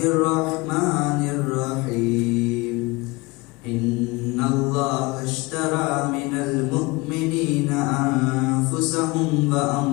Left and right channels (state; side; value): quieter; right; 24.0 dB